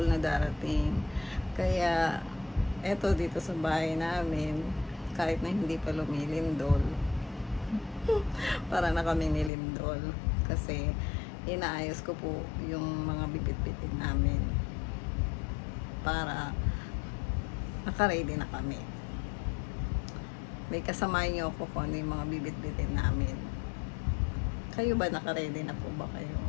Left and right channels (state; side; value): drops out; right; at 9.5 s